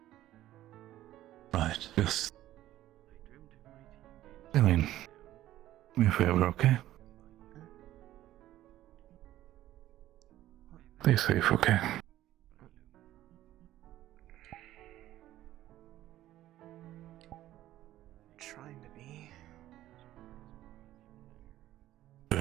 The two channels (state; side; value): quieter; left; 14.1 dB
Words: Right, yes. Céline, do me a favor, okay? Stay safe, okay? Trying to be.